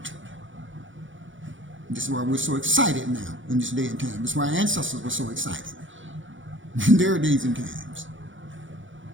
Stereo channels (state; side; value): late; left; 0.56 ms